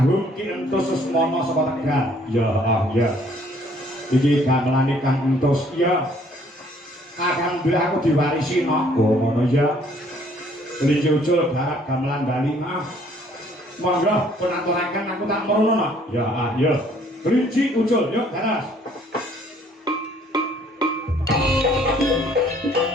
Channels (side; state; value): both; normal; correlation 0.61